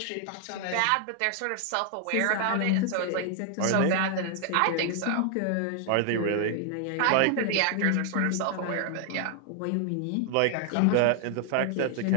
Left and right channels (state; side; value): different; both; correlation 0.00